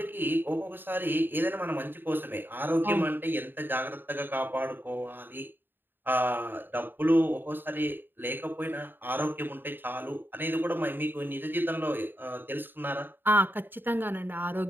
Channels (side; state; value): left; late; 0.095 ms